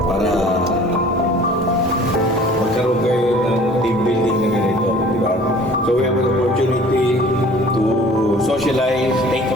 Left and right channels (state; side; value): normal; both; correlation 0.49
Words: para magkaroon kayo ng team building na ganito, di ba? So we have an opportunity to socialize, take